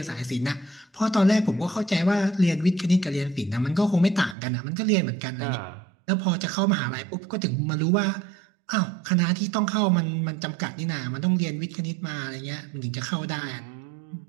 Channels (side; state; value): left; drops out; at 4.4 s